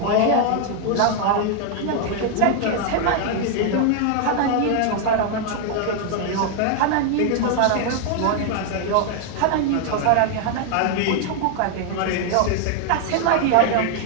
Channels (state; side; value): different; both; correlation 0.00